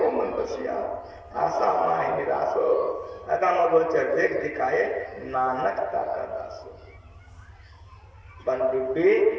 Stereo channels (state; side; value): identical; both; correlation 1.00